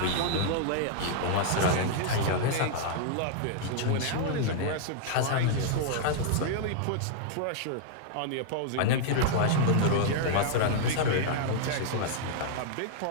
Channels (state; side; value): different; both; correlation -0.01